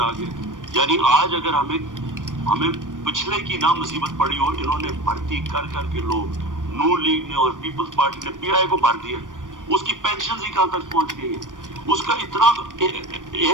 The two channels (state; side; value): late; left; 0.88 ms